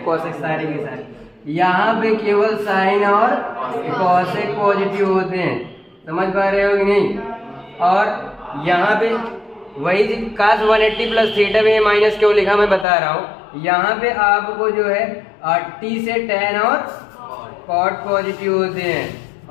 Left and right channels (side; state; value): right; drops out; at 12.9 s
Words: cosec सारे के सारे, यहाँ पे केवल साइन और कॉसेक पॉजिटिव होते हैं। समझ पा रहे हो कि नहीं? और यहाँ पे वही काश 180 प्लस थीटा में माइनस क्यों लिखा मैं बता रहा हूँ। यहाँ पे आपको जो है टी से टेन और कॉट पॉजिटिव होते हैं